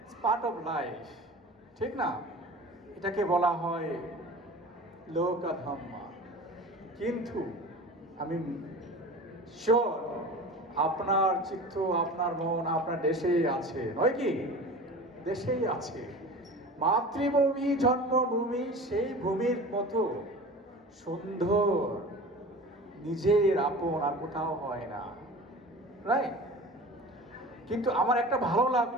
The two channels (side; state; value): both; normal; correlation 0.37